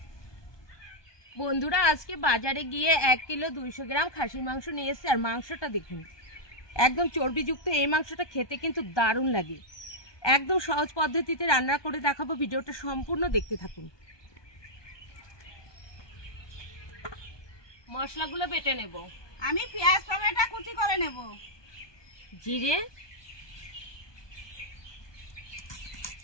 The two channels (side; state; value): right; late; 1.2 ms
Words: বন্ধুরা আজকে বাজারে গিয়ে 1 কিলো 200 গ্রাম খাসির মাংস নিয়ে এসেছি। আর মাংসটা দেখুন একদম চর্বিযুক্ত। এই মাংসটা খেতে কিন্তু দারুণ লাগে। একদম সহজ পদ্ধতিতে রান্না করে দেখাবো, ভিডিওটা সম্পূর্ণ দেখতে থাকুন। মশলাগুলো বেটে নেব। আমি পেঁয়াজ টমেটো কুচি করে নেব। জিরে,